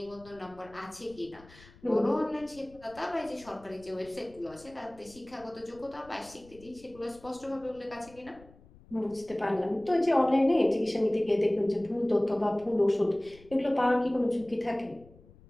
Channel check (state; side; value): noise; left; rumble, 24 dB below the sound